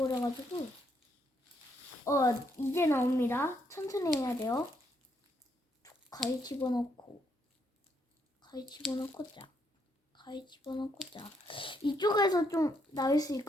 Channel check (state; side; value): normal; both; correlation 0.75